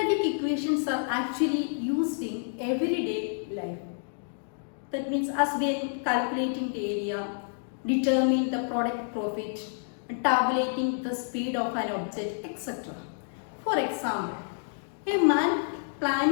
equations are actually used in everyday life. That means as when calculating the area, determining the product profit, and tabulating the speed of an object, etc. For example, a man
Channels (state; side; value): silent; right; digital silence